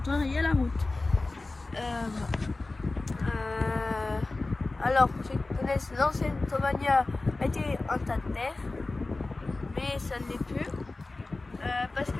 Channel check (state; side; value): quieter; right; 3.3 dB